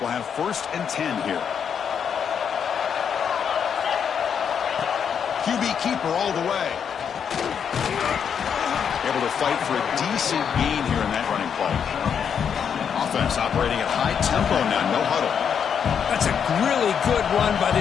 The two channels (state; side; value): quieter; right; 7.5 dB